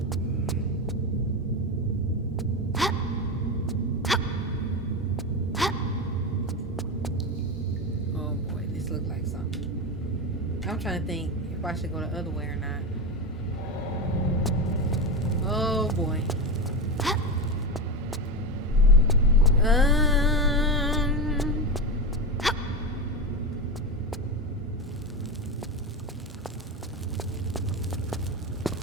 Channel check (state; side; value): normal; both; correlation 0.17